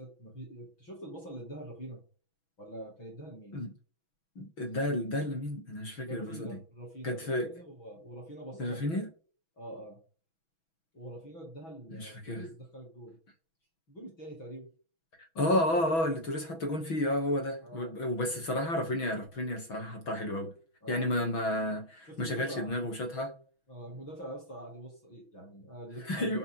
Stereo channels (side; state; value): right; late; 6.1 ms